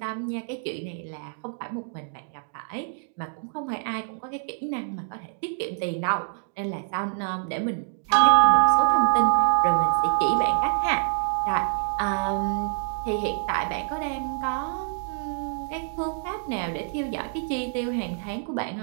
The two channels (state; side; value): silent; left; digital silence